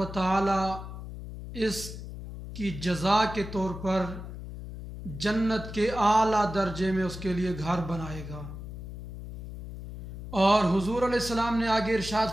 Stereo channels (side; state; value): left; noise; hum, 10 dB below the sound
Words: तआला इसकी जज़ा के तौर पर जन्नत के आला दर्जे में उसके लिए घर बनाएगा। और हुज़ूर अलैहिस्सलाम ने आगे इरशाद